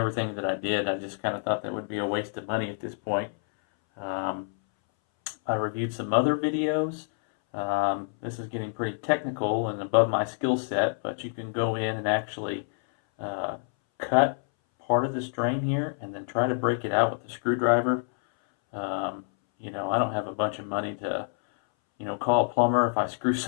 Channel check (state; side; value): silent; right; 60 dB below the other